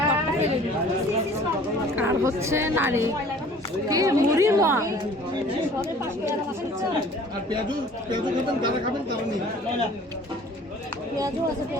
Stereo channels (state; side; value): normal; both; correlation 0.50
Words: আর হচ্ছে নারী কি মুড়ির মোয়া। আর পেঁয়াজু খাবেন, যারা খাবেন তারা নিন। পেঁয়াজও আছে,